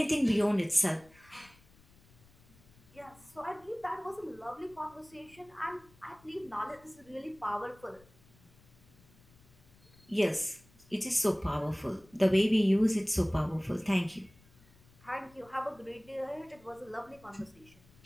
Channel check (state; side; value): noise; left; rumble, 27 dB below the sound